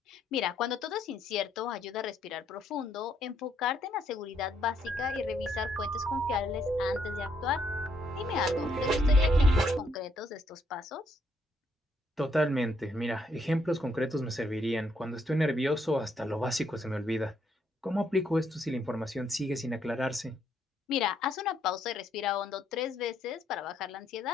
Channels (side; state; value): both; normal; correlation 0.72